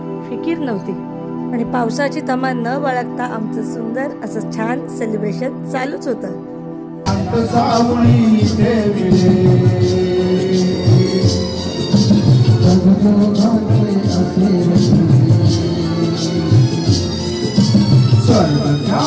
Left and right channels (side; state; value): both; identical; correlation 1.00